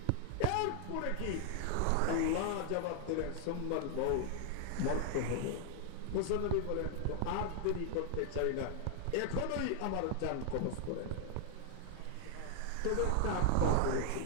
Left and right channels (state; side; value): different; both; correlation 0.00